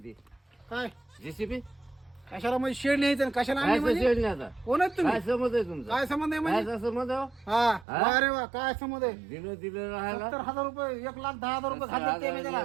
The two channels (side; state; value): left; drops out; at 7.9 s